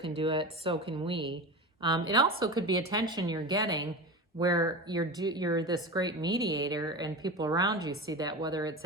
do it, so can we. It also could be attention you're getting where you're this great mediator, and people around you see that, whether it's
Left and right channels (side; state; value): both; normal; correlation 0.26